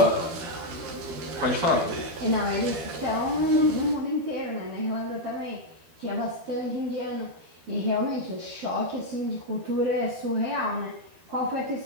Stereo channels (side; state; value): left; late; 12 ms